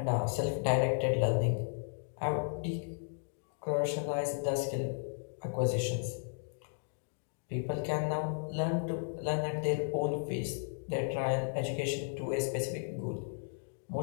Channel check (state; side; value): silent; right; digital silence